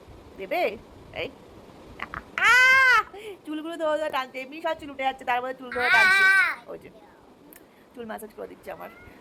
দেবে? এই চুলগুলো ধরে ধরে টানছে, এমনি সব চুল উঠে যাচ্ছে, তার মধ্যে চুল ধরে টানছে। ওই যে চুল ম্যাসাজ করে দিচ্ছে আমার,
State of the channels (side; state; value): both; identical; correlation 1.00